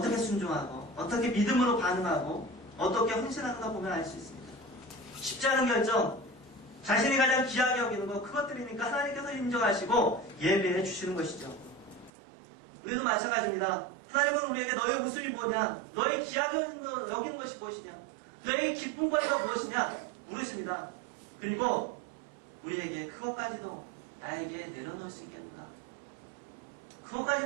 순종하고 어떻게 믿음으로 반응하고 어떻게 헌신하는가 보면 알 수 있습니다. 쉽지 않은 결정, 자신이 가장 귀하게 여기는 것, 그것들이니까 하나님께서 인정하시고 예배해 주시는 것이죠. 우리도 마찬가지입니다. 하나님은 우리에게 너의 웃음이 뭐냐, 너의 귀하게 여기는 것이 무엇이냐, 너의 기쁨거리가 무엇이냐 물으십니다. 그리고 우리에게 그것까지도 나에게 내려놓을 수 있겠는가,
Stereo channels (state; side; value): drops out; left; at 12.1 s